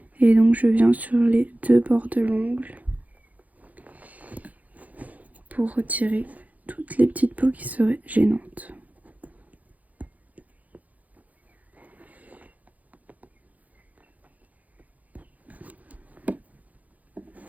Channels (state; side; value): late; left; 0.077 ms